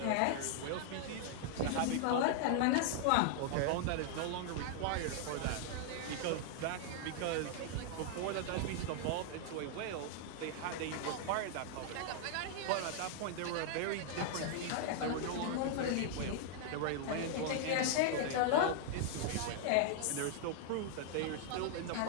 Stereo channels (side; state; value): both; different; correlation 0.00